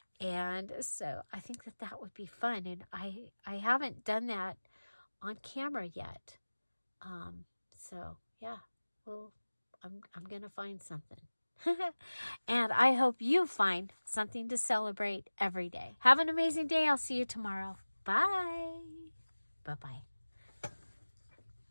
And so I think that that would be fun. And I haven't done that on camera yet. So yeah, well, I'm going to find something. And I hope you find something to celebrate every day. Have an amazing day. I'll see you tomorrow. Bye. Bye-bye.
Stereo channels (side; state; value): both; inverted; correlation -1.00